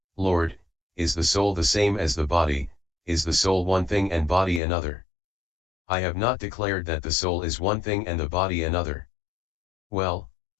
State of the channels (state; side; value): drops out; right; at 4.6 s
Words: Lord, is the soul the same as the body, is the soul one thing and body another? I have not declared that the soul is one thing and the body another. Well,